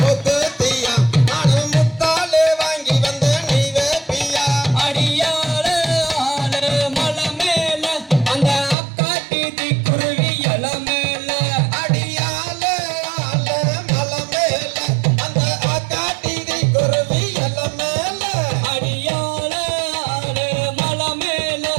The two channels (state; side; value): drops out; left; at 8.8 s